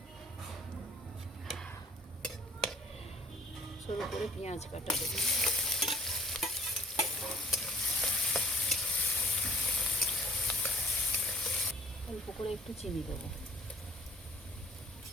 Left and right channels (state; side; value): normal; both; correlation 0.52